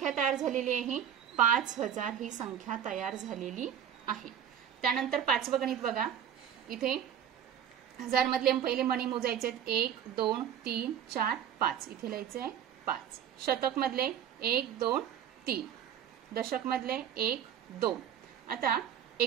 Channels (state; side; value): quieter; left; 9.2 dB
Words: तयार झालेली आहे? 5000 ही संख्या तयार झालेली आहे। त्यानंतर पाचवं गणित बघा, इथे हजार मधले पहिले मणी मोजायचे आहेत। 1 2 3 4 5 इथे लिहायचे आहे 5। शतक मधले 1 2 3, दशक मधले 1 2। आता